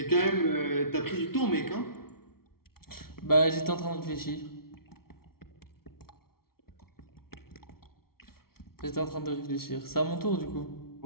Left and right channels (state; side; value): late; right; 0.94 ms